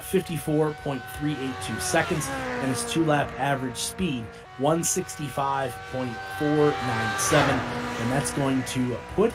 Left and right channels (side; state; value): both; identical; correlation 1.00